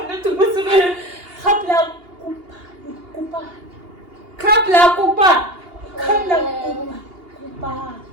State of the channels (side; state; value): left; late; 2.8 ms